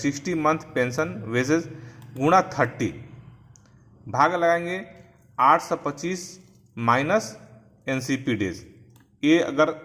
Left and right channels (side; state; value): both; identical; correlation 1.00